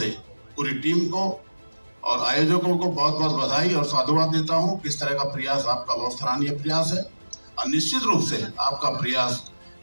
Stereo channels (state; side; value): inverted; both; correlation -1.00